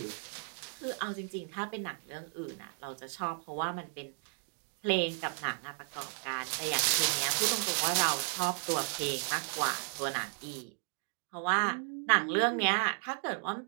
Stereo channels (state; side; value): silent; left; 55 dB below the other